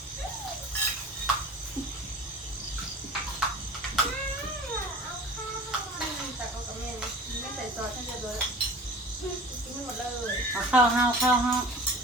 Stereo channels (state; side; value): normal; both; correlation 0.41